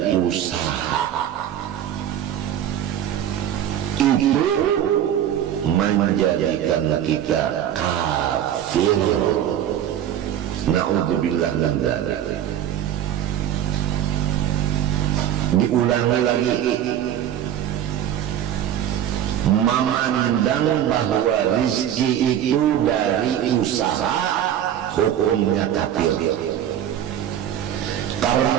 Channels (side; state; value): left; quieter; 10.6 dB